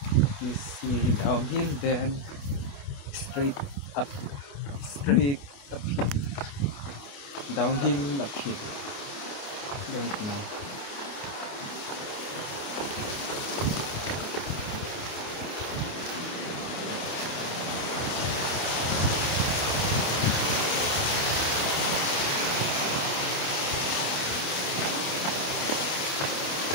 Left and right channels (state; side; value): late; right; 28 ms